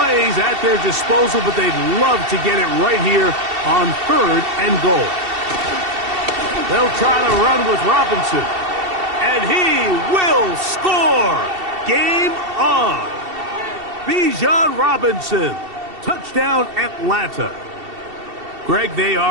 at their disposal, but they'd love to get it right here on 3rd and goal. They'll try to run with Robinson. And he will score! Game on! Bijan Robinson. Touchdown, Atlanta. Greg, they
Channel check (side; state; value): left; late; 2.7 ms